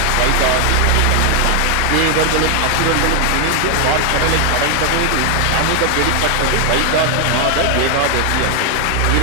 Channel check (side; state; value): both; different; correlation 0.01